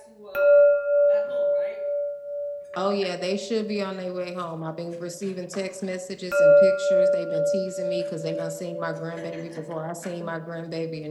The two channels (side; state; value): both; identical; correlation 1.00